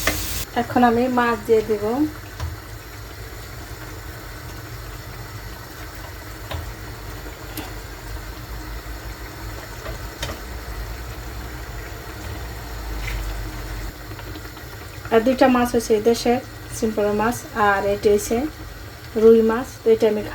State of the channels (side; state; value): both; identical; correlation 1.00